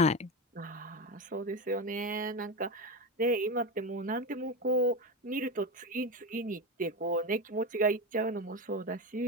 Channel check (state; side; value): normal; both; correlation 0.19